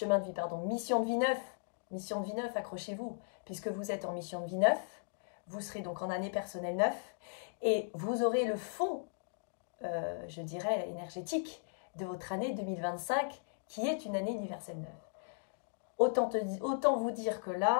de vie 9. Mission de vie 9, accrochez-vous. Puisque vous êtes en mission de vie 9, vous serez donc en année personnelle 9 et vous aurez le fond, je dirais, énergétique de votre année 2025 qui est une année universelle 9. Autant vous dire que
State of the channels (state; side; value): silent; right; digital silence